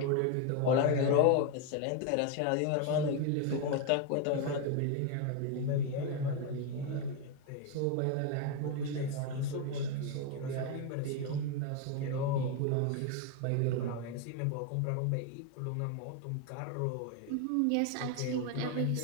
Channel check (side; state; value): both; different; correlation 0.01